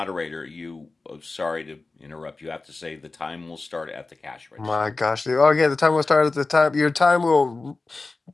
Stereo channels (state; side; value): quieter; right; 3.6 dB